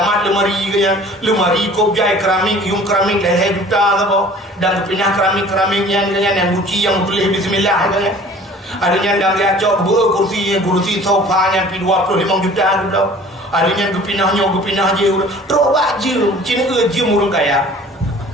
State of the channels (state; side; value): normal; both; correlation 0.48